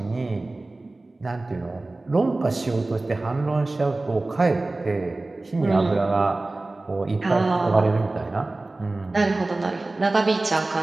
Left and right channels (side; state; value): left; quieter; 3.0 dB